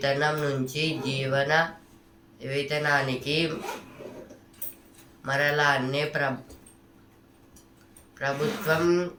నుంచి జీవన వేతనానికి మరలాన్నే ప్రభుత్వం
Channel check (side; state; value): both; identical; correlation 1.00